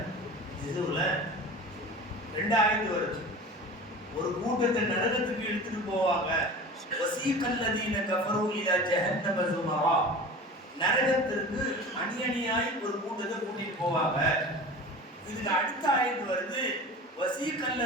இதுல 2 ஆயத்து வருது. ஒரு கூட்டத்தை நரகத்துக்கு இழுத்துட்டு போவாங்க. வசீகல்லதீன கஃபரு இலா ஜஹன்னம ஸுமரா, நரகத்திற்கு அணியணியாய் ஒரு கூட்டத்தை கூட்டிட்டு போவாங்க. இதுக்கு அடுத்த ஆயத்து வருது,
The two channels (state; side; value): normal; both; correlation 0.36